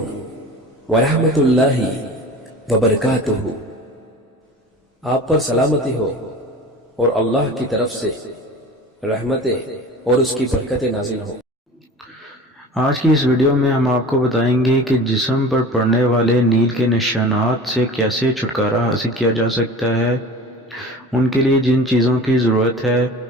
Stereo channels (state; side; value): normal; both; correlation 0.38